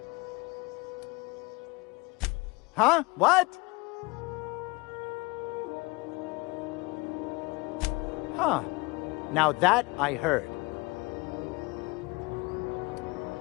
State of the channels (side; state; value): right; quieter; 25.0 dB